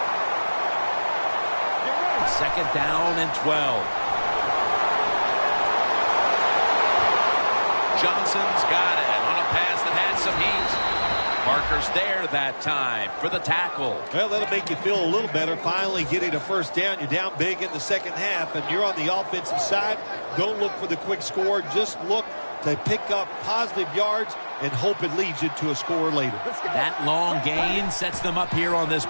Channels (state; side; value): inverted; both; correlation -1.00